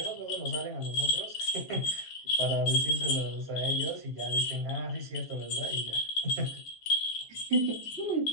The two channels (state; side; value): late; right; 7.5 ms